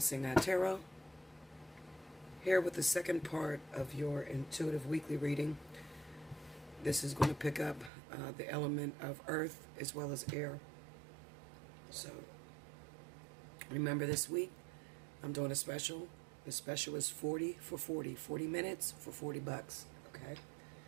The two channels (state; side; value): drops out; left; at 7.9 s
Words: here with the second part of your intuitive weekly reading. This is going to pick up the element of earth as well as air. So remember, this week I'm doing a special. The special is 40 for 40 minutes for $40. Okay,